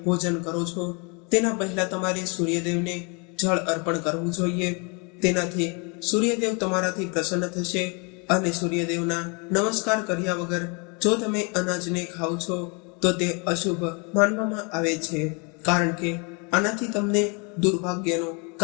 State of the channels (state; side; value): quieter; right; 33.2 dB